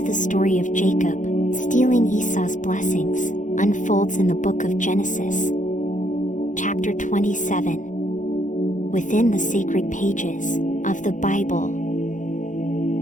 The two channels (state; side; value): late; right; 0.37 ms